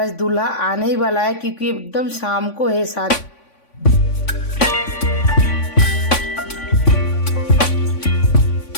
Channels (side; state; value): right; late; 3.5 ms